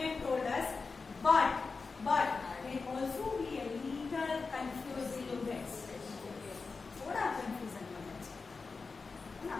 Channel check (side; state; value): right; quieter; 4.4 dB